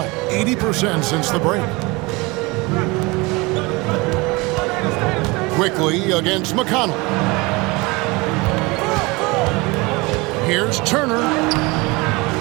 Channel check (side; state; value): left; quieter; 24.6 dB